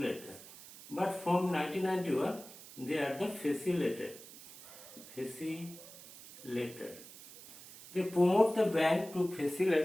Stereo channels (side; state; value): right; noise; hiss, 17 dB below the sound